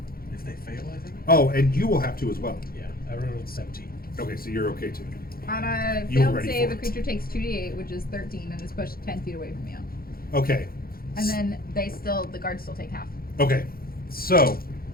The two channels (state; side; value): late; right; 0.43 ms